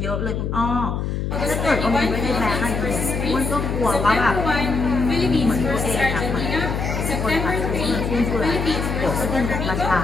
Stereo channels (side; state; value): left; noise; hum, 2 dB below the sound